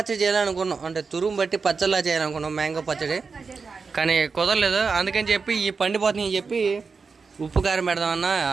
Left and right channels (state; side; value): quieter; left; 4.9 dB